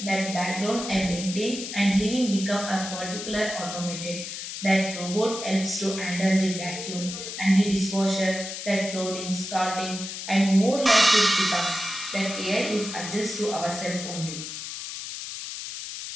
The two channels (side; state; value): left; noise; hiss, 8 dB below the sound